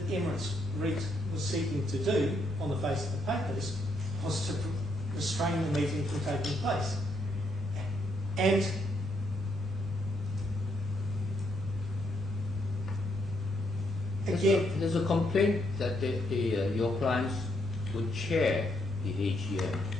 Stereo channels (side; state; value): both; normal; correlation 0.75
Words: Emirates REIT was seeking to do on the face of the papers was to restrain the meeting from taking place. Again, There's a complaint that your clients would chair the AGM.